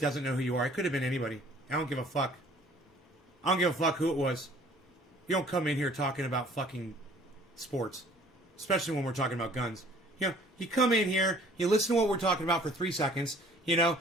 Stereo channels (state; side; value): normal; both; correlation 0.54